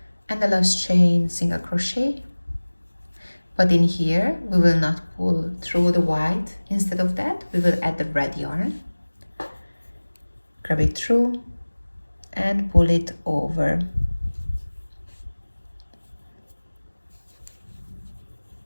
And the last chain, single crochet. But in here we will not pull through the white. Instead of that, we will add the red yarn, grab it through and pull it over.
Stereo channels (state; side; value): inverted; both; correlation -1.00